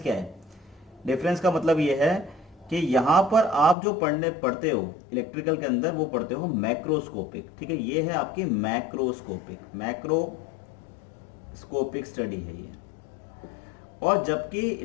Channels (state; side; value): drops out; right; at 3.8 s